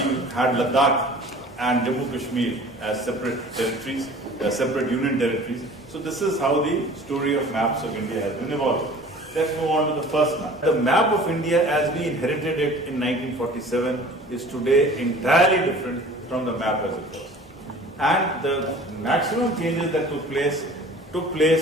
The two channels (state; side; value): normal; both; correlation 0.45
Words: had Ladakh and Jammu Kashmir as separate territories, separate union territories. So this is how the story of maps of India has been evolved. Let's move on to the first map. The map of India as we inherited it in 1947 is today entirely different from the map as it was. And the maximum changes that took place